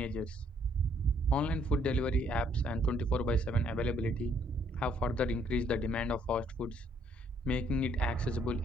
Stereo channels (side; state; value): both; normal; correlation 0.66